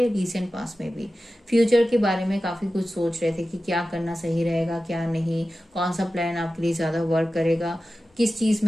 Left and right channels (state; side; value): normal; both; correlation 0.94